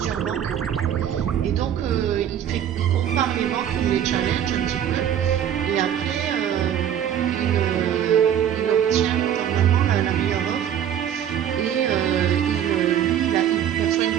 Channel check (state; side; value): quieter; left; 9.7 dB